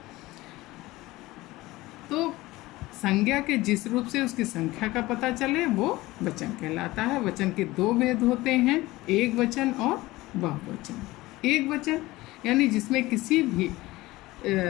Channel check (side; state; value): right; quieter; 19.1 dB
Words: तो संज्ञा के जिस रूप से उसकी संख्या का पता चले वो वचन कहलाता है। वचन के दो भेद होते हैं, एक वचन और बहुवचन। एक वचन यानी जिसमें किसी भी